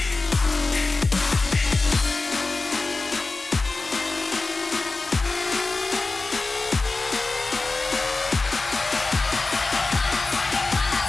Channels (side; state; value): right; quieter; 3.6 dB